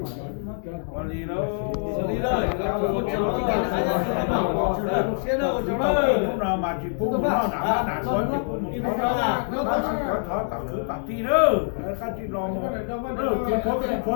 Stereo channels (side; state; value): right; silent; digital silence